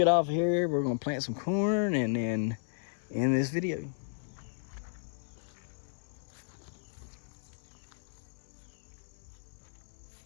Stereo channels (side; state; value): right; silent; 55 dB below the other